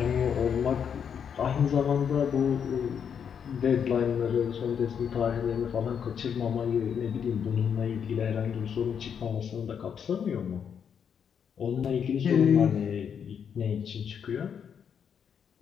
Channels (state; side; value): quieter; right; 7.6 dB